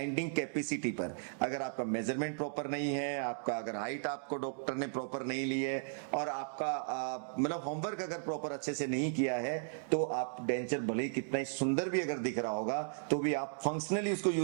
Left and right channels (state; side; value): silent; left; digital silence